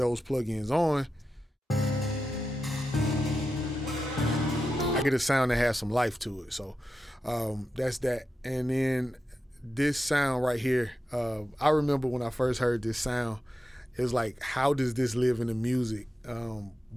plugins on, I get a sound that has some life to it. So that's that. And then this sound right here, I remember when I first heard this sound, it was like, how does this live in the music?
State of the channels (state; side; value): normal; both; correlation 0.90